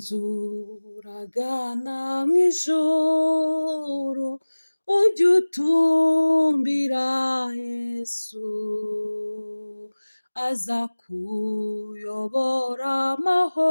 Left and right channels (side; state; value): both; inverted; correlation -1.00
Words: mw'ijuru, ujye utumbira Yesu, aza kuyobora